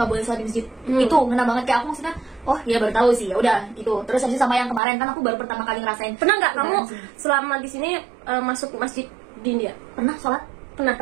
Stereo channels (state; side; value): drops out; left; at 4.8 s